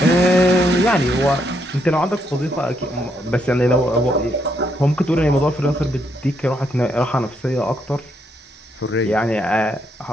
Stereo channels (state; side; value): normal; both; correlation 0.76